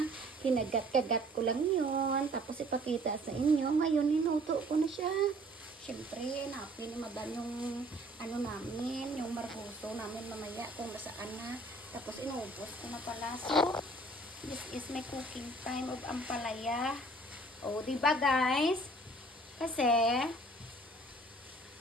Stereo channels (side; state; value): both; normal; correlation 0.54